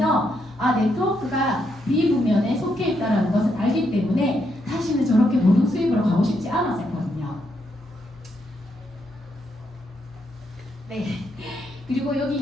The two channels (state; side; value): normal; both; correlation 0.78